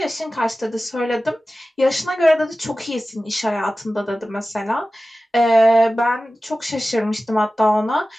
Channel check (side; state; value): both; normal; correlation 0.96